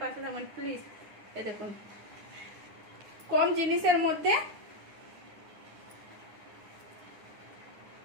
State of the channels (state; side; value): late; left; 9.8 ms